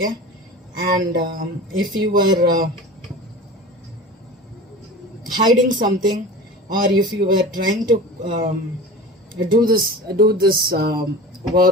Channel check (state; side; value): normal; both; correlation 0.35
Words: and if you were hiding something, or if you were trying to do this